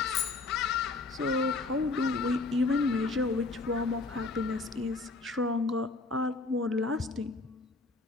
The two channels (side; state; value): right; quieter; 3.6 dB